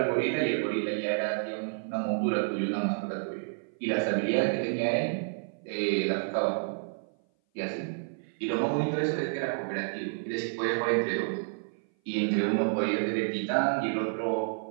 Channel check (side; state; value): left; silent; 56 dB below the other